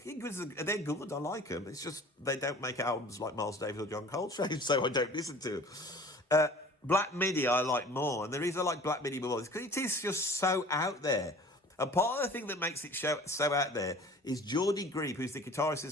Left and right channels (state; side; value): normal; both; correlation 0.45